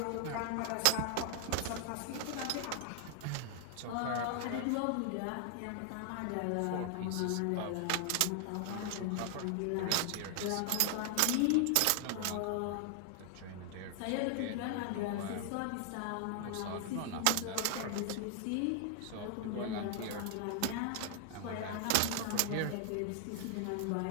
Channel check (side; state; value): both; different; correlation 0.00